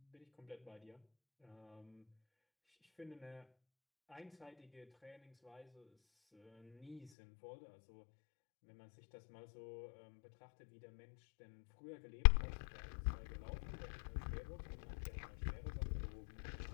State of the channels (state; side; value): drops out; right; at 7.1 s